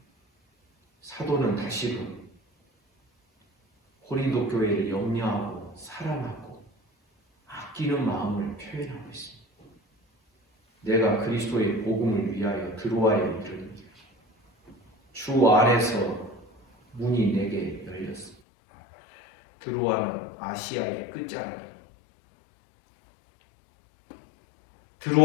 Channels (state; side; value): drops out; right; at 18.4 s